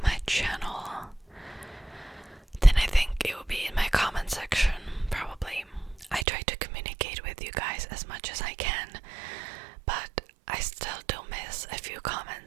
my channel, then I think it will be in my comment section, probably. I try to communicate with you guys as much as I can, but I still do miss a few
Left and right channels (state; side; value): drops out; left; at 6.2 s